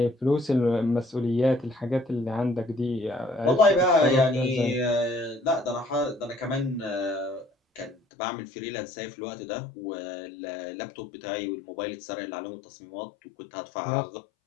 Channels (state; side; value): drops out; right; at 8.0 s